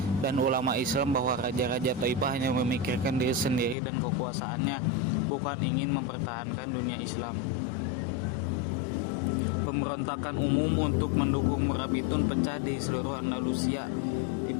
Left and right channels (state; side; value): drops out; right; at 3.8 s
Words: dan ulama Islam bahwa raja-raja Taifah hanya memikirkan diri sendiri dan kekuasaannya, bukan ingin mempertahankan dunia Islam. Pemberontakan umum untuk mendukung Murabitun pecah di seluruh Andalusia,